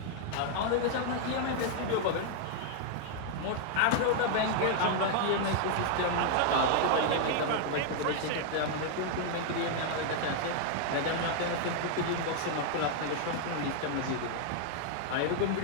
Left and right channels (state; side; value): different; both; correlation -0.01